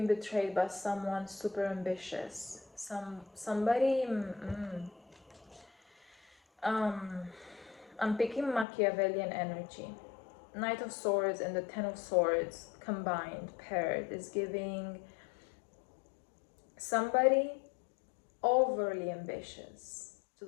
betrayed by someone super ambitious. Somebody. I'm picking Machiavellian energy. Knight of Swords and the Ten of Swords combined, paired, is giving somebody overly ambitious to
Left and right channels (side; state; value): right; drops out; at 8.7 s